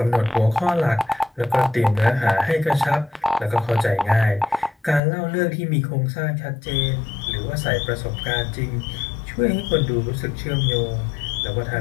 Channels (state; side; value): drops out; right; at 5.0 s